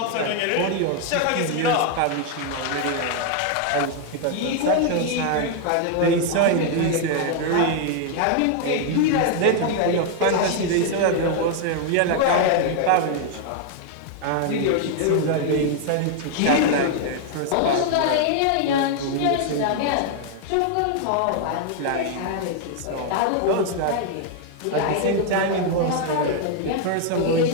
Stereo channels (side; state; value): both; different; correlation 0.00